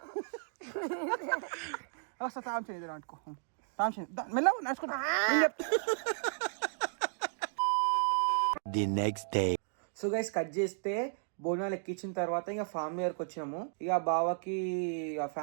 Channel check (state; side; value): silent; left; digital silence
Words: వస్తా. తాం చేయదు అనుకో, తాం చేయ మెల్ల నడుచుకుంటా. The next day. So guys cut చేస్తే బోనాలు ఎక్కించిన తర్వాత ఇంకా ఫ్యామిలీ దగ్గరకు వచ్చినాము. ఇక బావకి ఇక